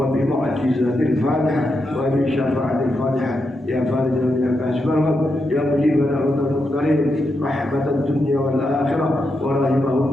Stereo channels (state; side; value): normal; both; correlation 0.85